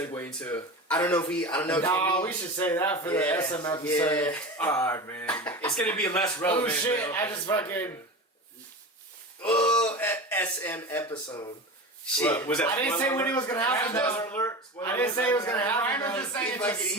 into. I don't know. No, we should say that for the SM episode. Yeah. Alright, man. It's gonna be less relevant. Oh shit! man. I just fucking. SM episode. Shit. What, was that I didn't say when it was gonna happen. Spoiler though. alert. Spoiler I didn't say it was gonna happen. Ryan was though. just saying He it's a fucking-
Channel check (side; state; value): both; normal; correlation 0.29